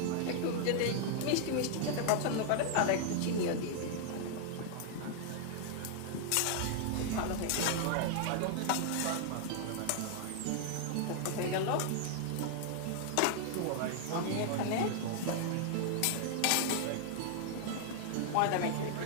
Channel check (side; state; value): both; different; correlation 0.00